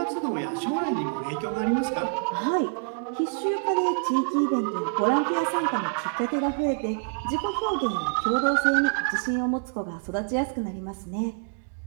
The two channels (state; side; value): silent; left; 60 dB below the other